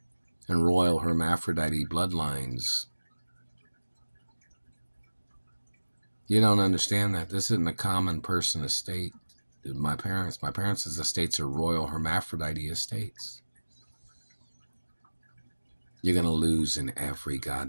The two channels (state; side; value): inverted; both; correlation -1.00